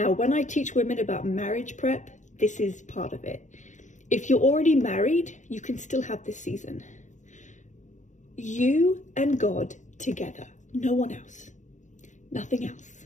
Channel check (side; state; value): right; late; 0.35 ms